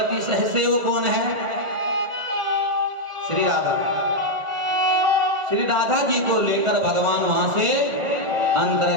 सहसेव कौन है? श्री राधा। श्री राधा जी को लेकर भगवान वहां से अंतर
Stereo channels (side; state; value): left; late; 1.5 ms